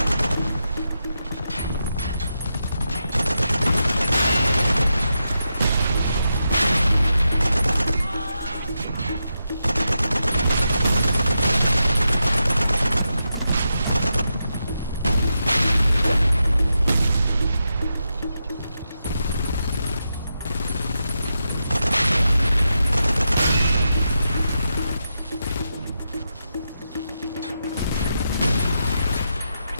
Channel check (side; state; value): both; inverted; correlation -0.86